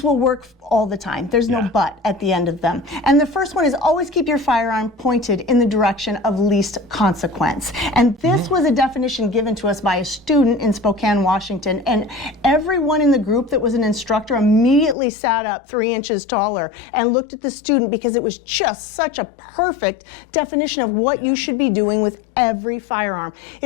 will work all the time. There's no but at the end of them. And the first one is always keep your firearm pointed in the direction of least consequence. And this was a definition given to us by a student in Spokane, Washington. And everyone in the group that was an instructor immediately sat up 3 inches taller and looked at the student, because it was just such a perfect definition of what you should be doing with every firearm.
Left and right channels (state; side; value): drops out; right; at 15.0 s